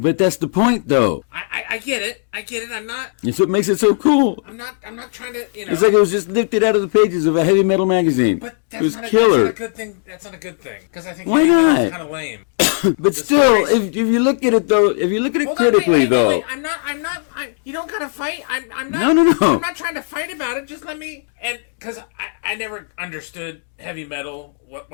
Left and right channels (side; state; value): right; silent; digital silence